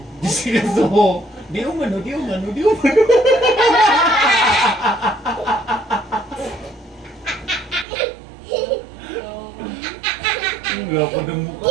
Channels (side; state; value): left; drops out; at 7.9 s